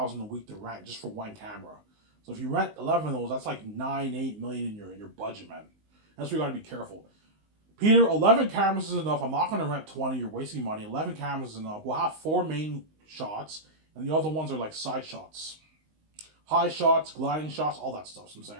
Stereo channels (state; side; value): late; left; 19 ms